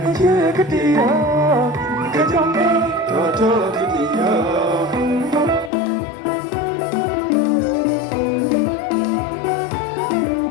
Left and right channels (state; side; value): drops out; right; at 5.7 s